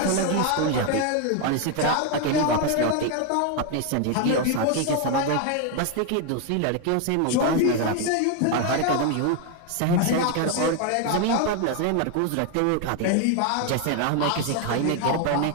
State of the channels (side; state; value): both; different; correlation 0.01